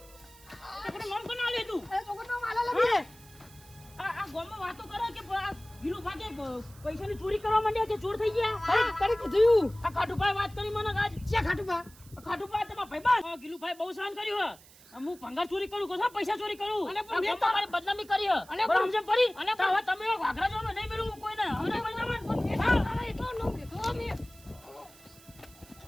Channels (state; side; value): noise; right; hiss, 23 dB below the sound